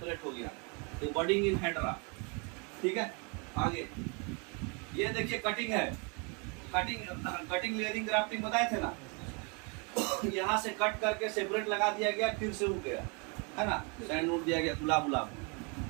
हो गया, तो बर्डिंग इन हाइड्रा, ठीक है। आगे ये देखिए कटिंग है, कटिंग लेयरिंग ग्राफ्टिंग बताए थे ना, यहाँ से कट करके सेपरेट लगा दिया गया, फिर से उग गया, है ना, सैंड नोट दिया गया, गुलाब गुलाब।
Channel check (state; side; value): quieter; left; 33.3 dB